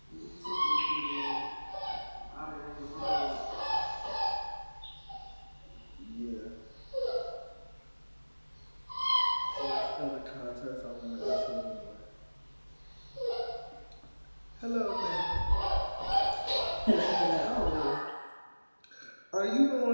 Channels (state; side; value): inverted; both; correlation -1.00